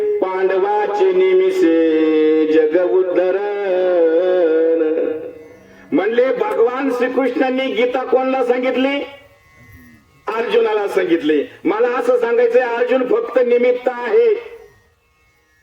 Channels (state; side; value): identical; both; correlation 1.00